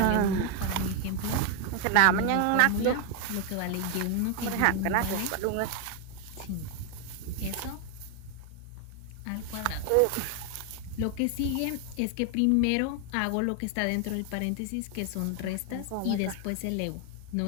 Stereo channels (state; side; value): different; both; correlation 0.01